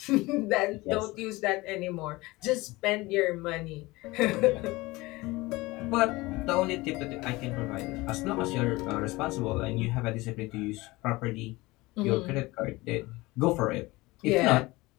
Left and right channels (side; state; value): right; quieter; 21.3 dB